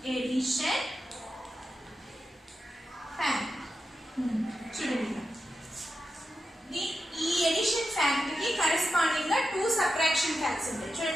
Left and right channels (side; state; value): both; normal; correlation 0.89